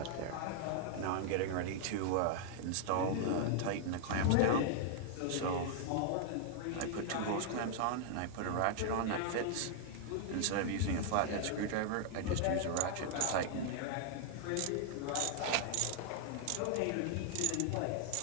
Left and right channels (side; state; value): both; different; correlation 0.00